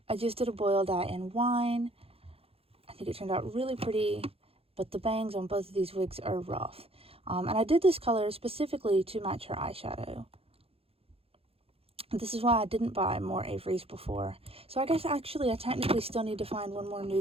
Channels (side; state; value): left; late; 0.28 ms